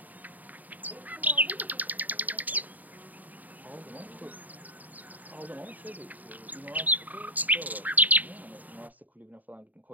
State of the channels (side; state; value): left; late; 0.080 ms